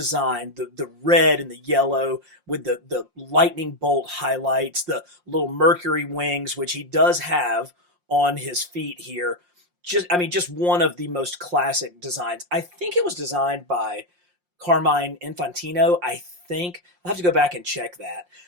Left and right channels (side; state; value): left; late; 5.6 ms